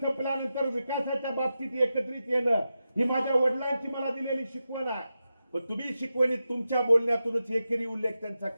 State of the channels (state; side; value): inverted; both; correlation -0.90